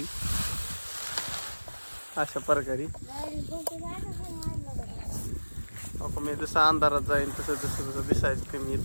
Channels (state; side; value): inverted; both; correlation -1.00